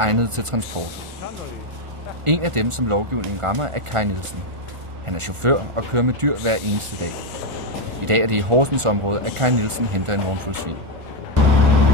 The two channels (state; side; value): late; left; 1.4 ms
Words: til transport. En af dem, som lovgivningen rammer, er Kai Nielsen. Han er chauffør og kører med dyr hver eneste dag. I dag er det i Horsens område, at Kai Nielsen henter en vognfuld svin.